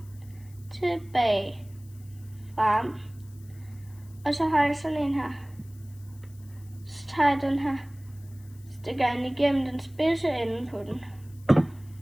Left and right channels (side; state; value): left; noise; hiss, 27 dB below the sound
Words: tilbage, frem. Og så har jeg sådan en her. Så tager jeg den her, stikker den igennem den spidse ende på den.